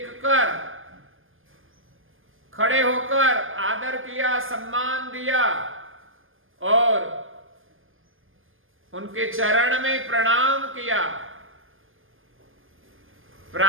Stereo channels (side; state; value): left; late; 0.59 ms